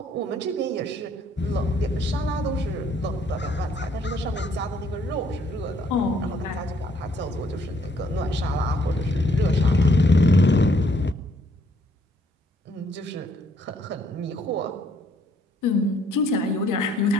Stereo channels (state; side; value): normal; both; correlation 0.66